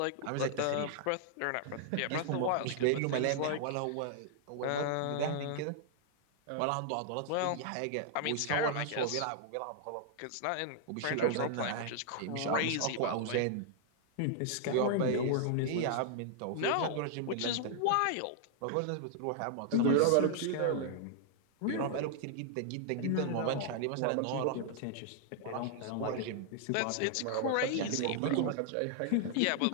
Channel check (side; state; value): both; different; correlation 0.00